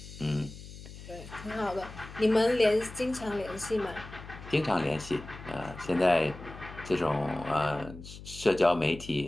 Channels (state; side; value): noise; left; hum, 14 dB below the sound